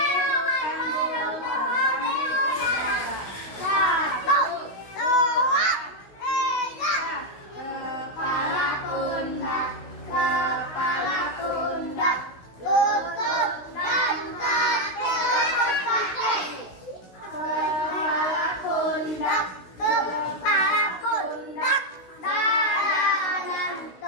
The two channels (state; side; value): late; right; 16 ms